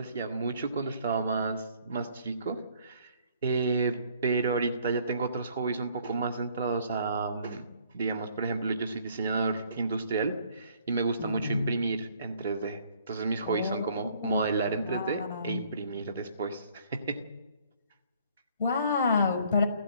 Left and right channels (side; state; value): both; inverted; correlation -0.61